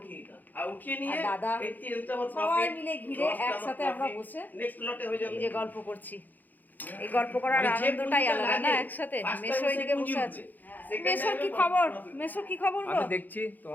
উঠিয়ে দিতাম আর উঠিয়ে নিয়ে আর দাদা, এই তেলটা আমার সবাই মিলে ঘিরে একসাথে আমরা বসে নেক্সট লটে হয়ে যাবে এই যে গল্প করছি। এই গল্প করার মানে যে আনন্দটাই পুঁজিটা আলাদা না, লাগে, একসাথে। first মেশো time এদিকে সে পুঁজি বসে আছে। উঠবে। Second মেশোর time কি এ খবর? profit। মেশো কি খবর গো? আমি দেখছি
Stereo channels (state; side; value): late; right; 0.085 ms